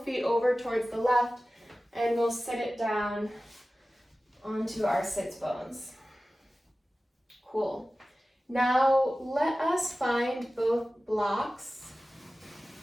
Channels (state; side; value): normal; both; correlation 0.96